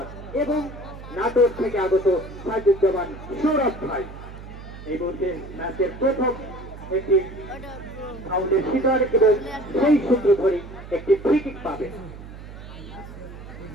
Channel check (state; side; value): noise; right; hum, 14 dB below the sound